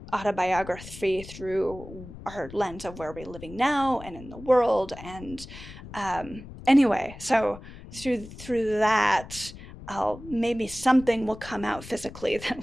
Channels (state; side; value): noise; left; rumble, 15 dB below the sound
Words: autobiography through our lens of where we're living now and in the world. And anyway, so through that, maybe something will come out physically